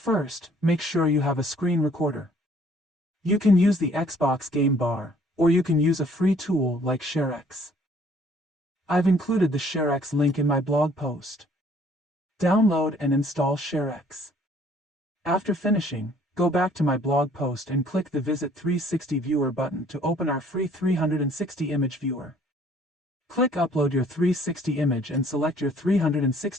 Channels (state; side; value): normal; both; correlation 0.59